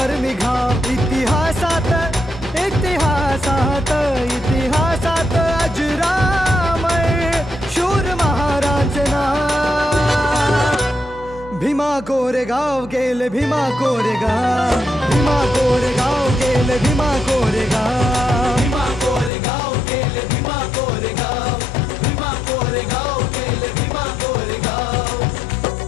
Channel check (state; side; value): drops out; right; at 19.3 s